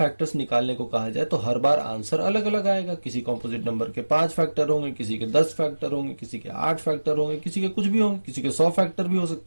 निकालने को कहा जाए तो हर बार आंसर अलग अलग आएगा। किसी कॉम्पोजिट नंबर के 5 फैक्टर होंगे, किसी के 10 फैक्टर होंगे, किसी के 8 फैक्टर होंगे, किसी के कुछ भी होंगे, किसी के 100 फैक्टर भी हो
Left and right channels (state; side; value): inverted; both; correlation -1.00